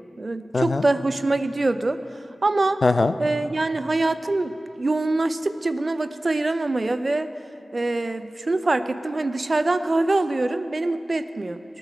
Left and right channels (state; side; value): normal; both; correlation 0.96